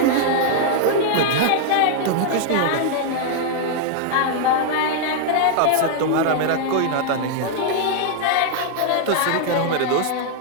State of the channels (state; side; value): different; both; correlation -0.01